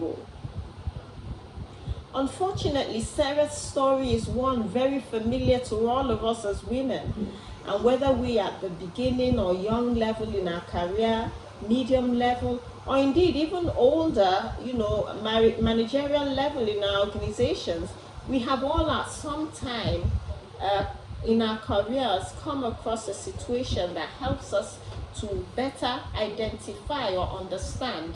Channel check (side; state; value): both; identical; correlation 1.00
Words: Unfortunately, Sarah's story is one very familiar to all of us as women. And whether we are at the beginning or young level in our career, medium level, or indeed even older, managerial level in our organizations, we have all at some time in our careers come across a situation that helps us to better identify or understand